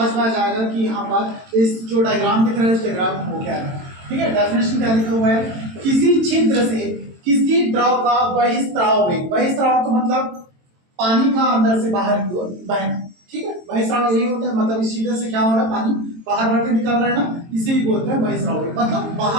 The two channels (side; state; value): left; late; 22 ms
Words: में आ जाएगा कि यहाँ पर इस जो डायग्राम दिख रहा है इस डायग्राम को क्या है। ठीक है, डेफिनेशन क्या लिखा हुआ है, किसी छिद्र से किसी द्रव का बहिस्राव वेग, बहिस्राव का मतलब पानी का अंदर से बाहर की ओर बहना। ठीक है, बहिस्राव यही होता है, मतलब इस छिद्र से क्या हो रहा है, पानी बाहर बढ़ के निकल रहा है ना, इसे ही बोलते हैं बहिस्राव वेग। मतलब